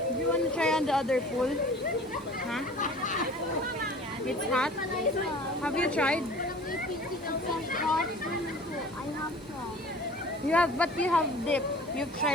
Do you want to try on the other pool? Huh? It's hot? Have you tried? You have, but you have dip. You've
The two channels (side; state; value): both; normal; correlation 0.45